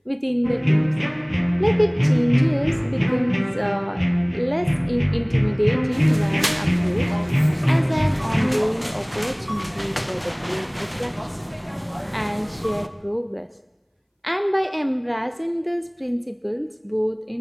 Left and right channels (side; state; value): both; identical; correlation 1.00